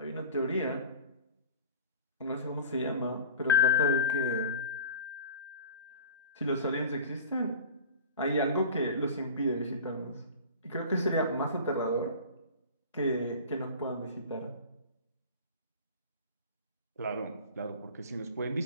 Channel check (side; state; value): both; inverted; correlation -0.33